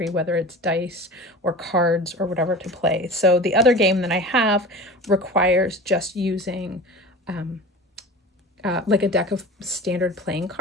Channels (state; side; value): normal; both; correlation 0.36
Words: whether it's dice or cards or whatever, to play. So the other game that I have requires just using like a deck of standard playing